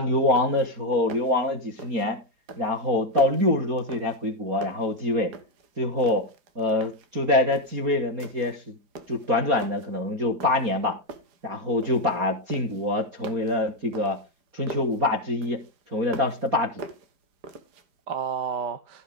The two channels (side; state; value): left; late; 4.3 ms